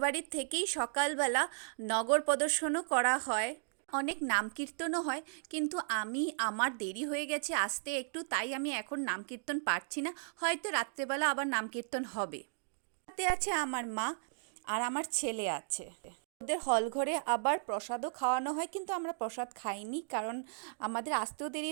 থেকেই সকালবেলা নগর প্রদর্শনও করা হয়, অনেক নাম কীর্তনও হয়। কিন্তু আমার দেরি হয়ে গেছে আসতে একটু, তাই আমি এখন নাম কীর্তন পারছি না। হয়তো রাত্রেবেলা আবার নাম কীর্তন হবে। সাথে আছে আমার মা আর আমার ছেলে আছে। ওদের হল ঘরে আবার প্রসাদও খাওয়ানো হয়, কিন্তু আমরা প্রসাদ খাইনি কারণ আমাদের আসতেও দেরি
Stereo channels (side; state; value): left; silent; digital silence